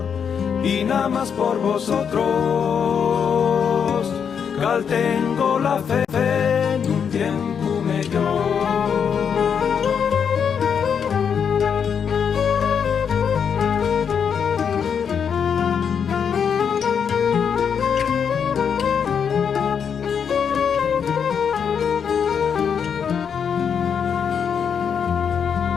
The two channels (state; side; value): quieter; right; 7.2 dB